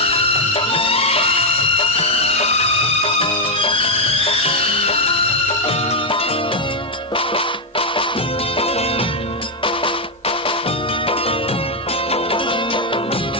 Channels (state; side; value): normal; both; correlation 0.01